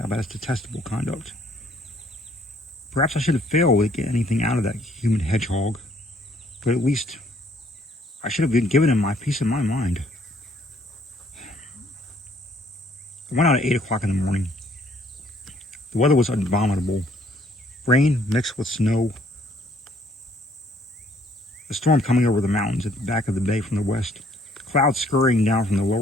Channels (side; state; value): both; normal; correlation 0.64